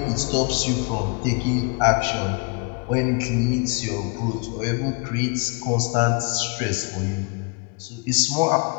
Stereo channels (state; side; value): quieter; right; 32.8 dB